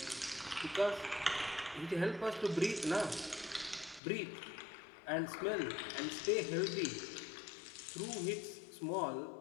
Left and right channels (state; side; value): drops out; right; at 4.0 s